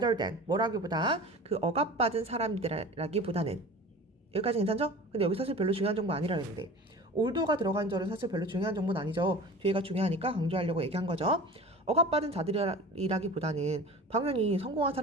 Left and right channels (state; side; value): normal; both; correlation 0.38